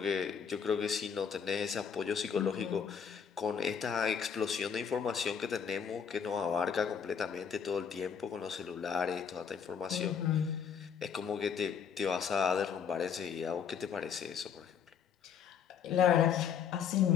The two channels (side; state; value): right; quieter; 7.3 dB